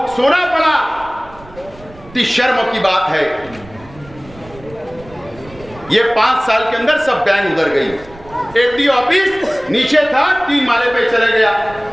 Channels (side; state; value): right; noise; rumble, 21 dB below the sound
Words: सोना पड़ा। इतनी शर्म की बात है। ये 5 साल के अंदर सब बैंक उधर गई। एफडी ऑफिस नीचे था, 3 माले पे चले गया।